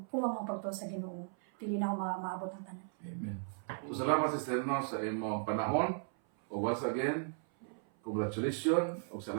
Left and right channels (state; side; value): silent; left; 54 dB below the other